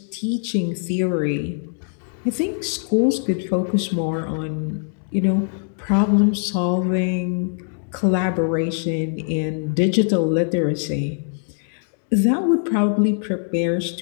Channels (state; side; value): silent; right; 64 dB below the other